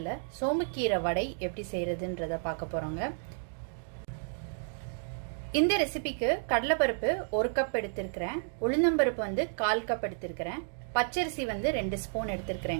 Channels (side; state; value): left; silent; digital silence